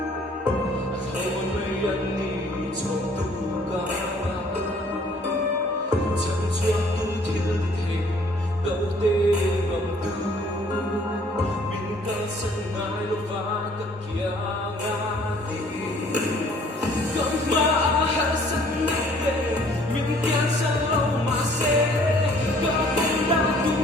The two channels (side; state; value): both; normal; correlation 0.58